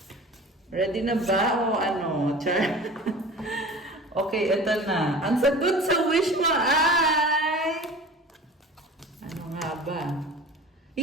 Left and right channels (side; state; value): both; normal; correlation 0.39